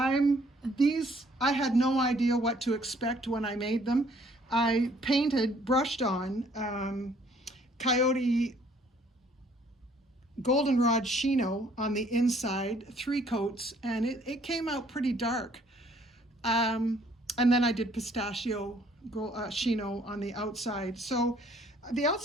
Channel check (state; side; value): normal; both; correlation 0.61